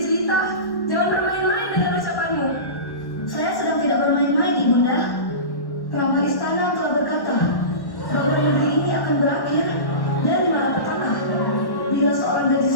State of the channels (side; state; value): right; late; 1.1 ms